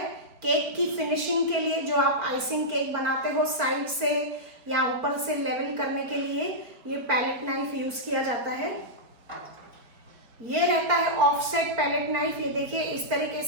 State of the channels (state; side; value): late; left; 4.5 ms